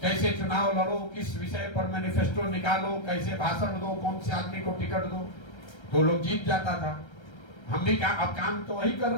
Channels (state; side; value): late; right; 1.3 ms